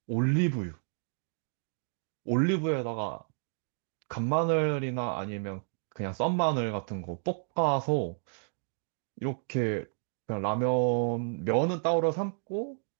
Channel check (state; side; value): silent; left; digital silence